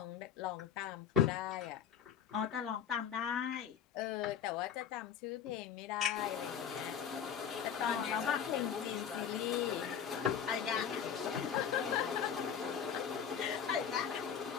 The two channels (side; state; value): right; quieter; 8.2 dB